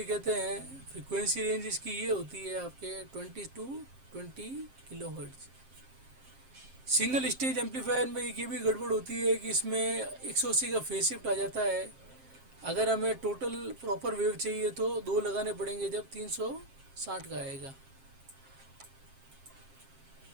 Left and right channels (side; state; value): left; late; 7.5 ms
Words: कहते हैं। फ्रिक्वेंसी रेंज इसकी ये होती है आपके 20 to 20 kilohertz. Single stage amplifier में एक ये भी गड़बड़ होती है कि इसमें 180 का फेज शिफ्ट आ जाता है, अगर हमें टोटल प्रॉपर वेव चाहिए तो 2 लगाने पड़ेंगे जब 360 का आएगा।